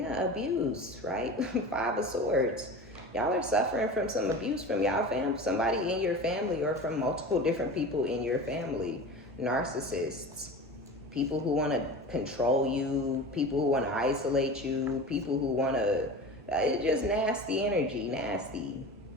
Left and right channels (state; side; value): normal; both; correlation 0.33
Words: abuse, right? 5 of Swords. Y'all are suffering from some abuse from y'all somebody in your family, or from multiple different people in your family. Narcissists, people who want to control you, people who want to isolate you, people who want to, it's just nasty energy, nasty.